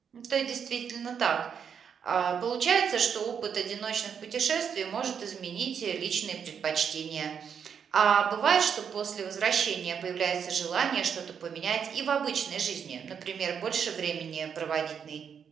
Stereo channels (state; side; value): quieter; left; 7.3 dB